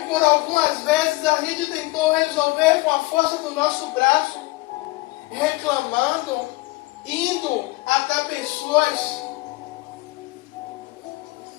por algumas vezes a gente tentou resolver com a força do nosso braço, reclamando, indo até pessoas.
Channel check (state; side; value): quieter; right; 21.6 dB